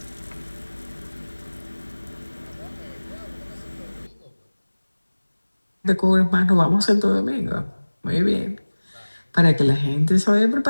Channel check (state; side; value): inverted; both; correlation -1.00